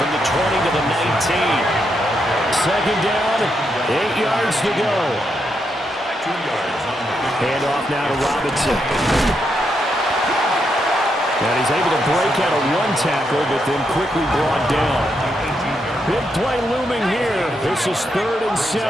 the 20 to the 19. 2nd down, 8 yards to go. 2 yards on the Hand off now to Robinson. And he's able to break out of 1 tackle, but then quickly brought down. Big play looming here. This is 3rd and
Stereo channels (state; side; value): normal; both; correlation 0.81